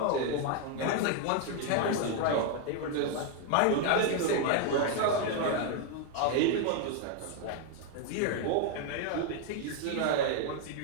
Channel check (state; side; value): different; both; correlation 0.01